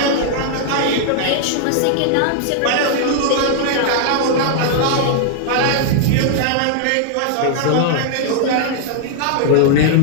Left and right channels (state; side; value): different; both; correlation -0.01